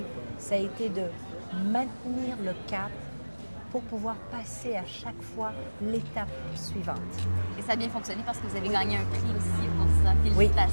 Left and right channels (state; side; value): inverted; both; correlation -1.00